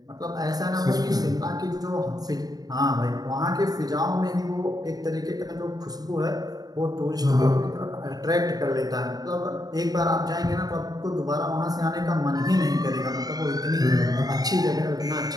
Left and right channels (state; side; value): late; left; 0.18 ms